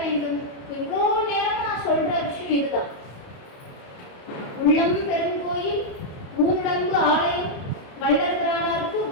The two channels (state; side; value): late; right; 28 ms